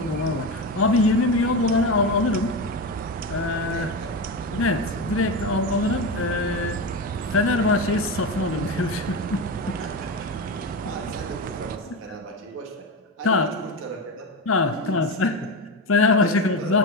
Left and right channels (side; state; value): both; normal; correlation 0.18